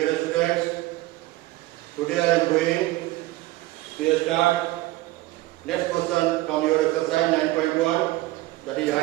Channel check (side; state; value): left; quieter; 18.0 dB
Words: students. Today I am going to start next question from your exercise 9.1, that is